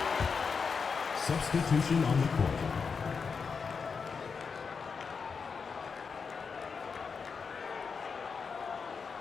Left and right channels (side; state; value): right; quieter; 5.5 dB